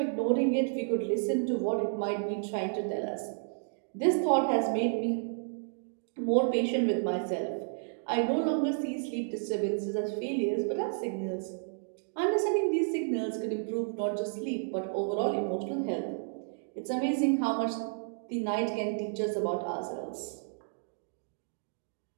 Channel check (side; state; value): left; silent; digital silence